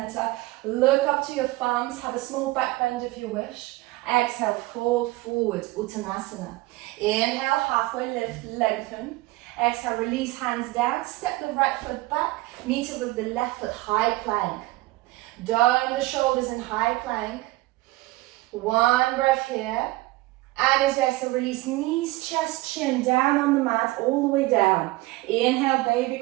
Look up to your thumbs, have a small back bend if you wish. Exhale, fold forward, Uttanasana. Inhale, halfway lift, lengthen. Exhale, release hands down, step the right foot back, meet it with the left foot, high plank. Down the shoulders in high plank. 1 breath here. And as you exhale, release knees, chest, chin down on the mat, all the way down. Inhale, baby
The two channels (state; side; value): quieter; left; 19.9 dB